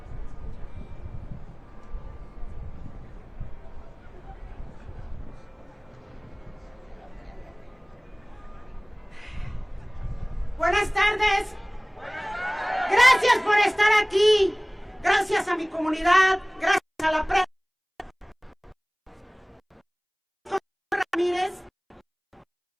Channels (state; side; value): identical; both; correlation 1.00